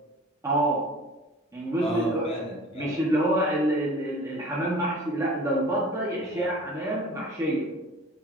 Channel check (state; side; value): normal; both; correlation 0.44